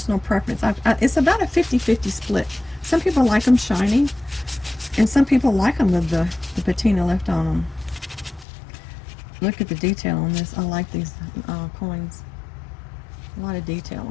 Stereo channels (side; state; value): right; drops out; at 8.5 s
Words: preference. It's about a 50-50 split. Some people like them shiny, and some people like them with the patina left on them. Look at the detail on this. I like these coins. A lot of detail